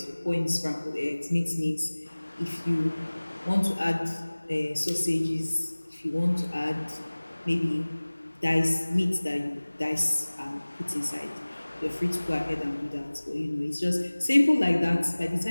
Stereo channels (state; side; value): inverted; both; correlation -1.00